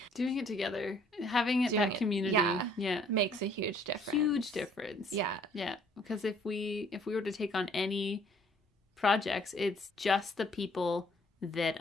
doing it together, having that community, makes a huge difference. Huge difference. Yeah. Because if we were to take on any projects, it's just the people that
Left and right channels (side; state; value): both; normal; correlation 0.60